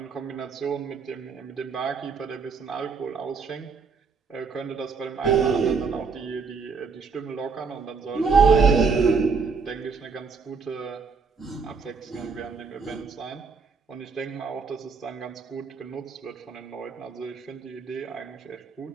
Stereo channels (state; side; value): quieter; left; 5.1 dB